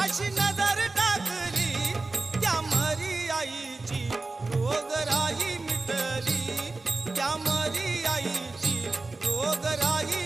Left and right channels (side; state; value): left; quieter; 3.5 dB